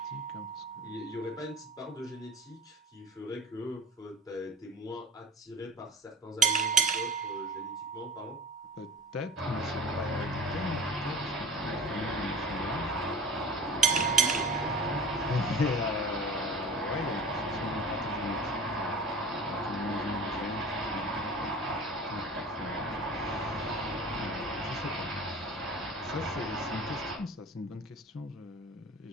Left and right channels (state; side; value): normal; both; correlation 0.39